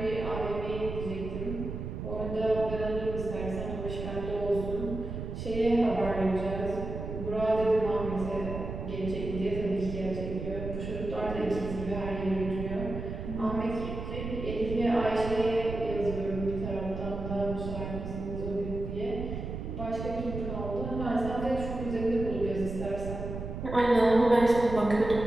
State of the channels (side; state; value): right; noise; rumble, 6 dB below the sound